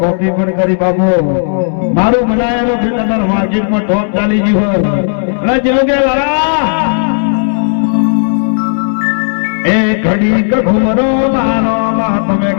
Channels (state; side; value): silent; right; digital silence